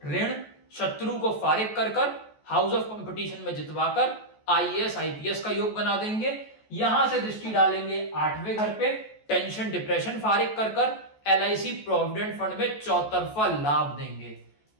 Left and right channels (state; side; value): late; right; 14 ms